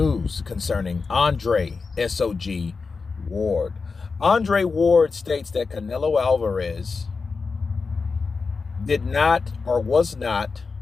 concerning Andre SOG Ward. Andre Ward states that Canelo Alvarez did not or was not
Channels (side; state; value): right; quieter; 4.6 dB